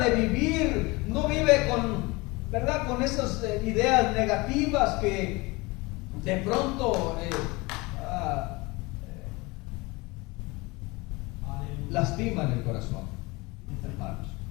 de vivir. No vive con, ¿verdad?, con esas ideas negativas que de pronto lastiman el corazón, hermanos.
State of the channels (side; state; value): right; quieter; 24.2 dB